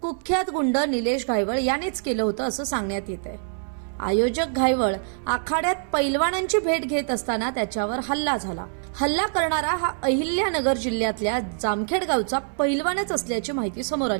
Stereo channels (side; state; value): left; silent; 59 dB below the other